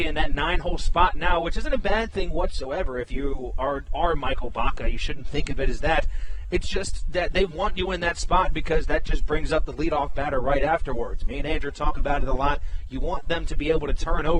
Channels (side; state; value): both; identical; correlation 1.00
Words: in that 9-hole spot now, which isn't a bad thing whatsoever. If you are Michael Baca, you shouldn't think of it as that. It's just that they want you in that spot because that just brings up the leadoff batter right afterwards. Me and Andrew talk about it a lot. You want them to be able to turn